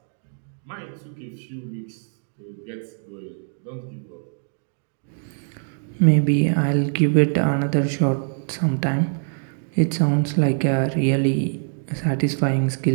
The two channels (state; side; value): silent; left; 63 dB below the other